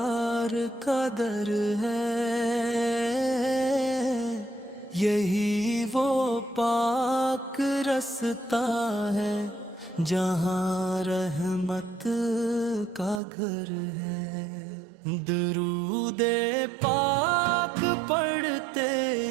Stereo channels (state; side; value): drops out; left; at 13.2 s